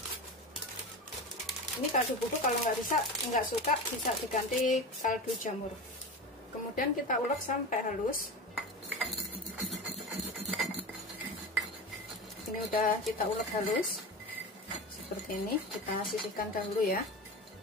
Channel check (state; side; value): normal; both; correlation 0.27